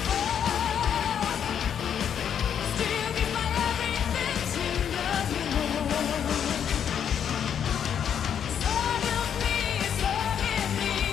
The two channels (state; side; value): quieter; right; 8.5 dB